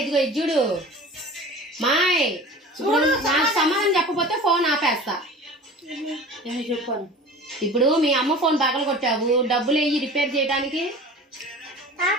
ఇది చూడు. మాయ్ ఇప్పుడు నాకు సమాధానం చెప్పకపోతే ఫోన్ ఆపేస్తా. చెప్పాను. ఇప్పుడు మీ అమ్మ ఫోన్ పగల కొట్టావు, డబ్బులు వెయ్యి రిపేర్ చేయడానికి.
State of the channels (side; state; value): both; normal; correlation 0.39